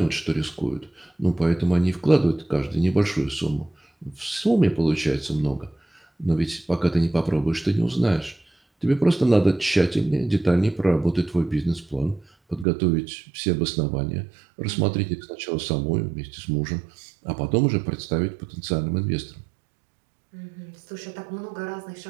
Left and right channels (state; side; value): drops out; left; at 12.7 s